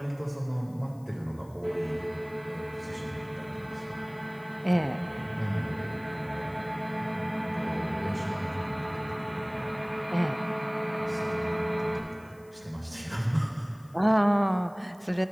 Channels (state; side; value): noise; left; hiss, 28 dB below the sound